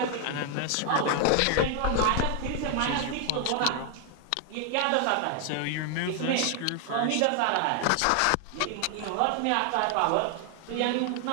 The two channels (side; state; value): both; different; correlation 0.00